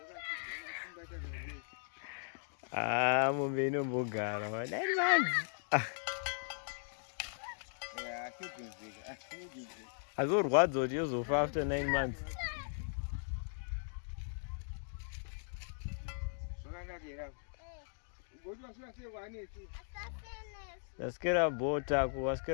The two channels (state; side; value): silent; right; digital silence